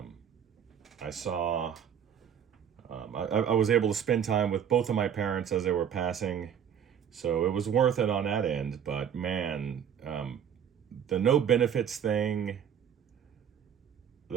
I saw, I was able to spend time with both of my parents as they were passing, so it was worth it on that end. But man, the no benefits thing,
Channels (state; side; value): quieter; left; 8.4 dB